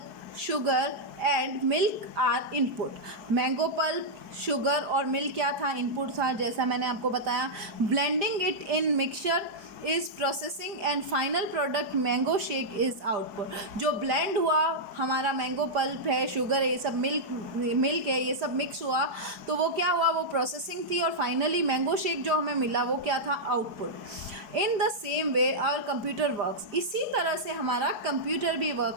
sugar and milk are input. Mango pulp, sugar और मिल्क क्या था? इनपुट था, जैसा मैंने आपको बताया। Blending it in mixture is processing and final product mango shake is output. जो blend हुआ हमारा मैंगो पल्प है, शुगर है, ये सब मिल्क है, ये सब मिक्स हुआ, तो वो क्या हुआ? वो प्रोसेसिंग थी, और फाइनली मैंगो शेक जो हमें मिला वो क्या था? Output. In the same way our computer works. इसी तरह से हमारा कंप्यूटर भी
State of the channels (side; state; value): left; late; 5.0 ms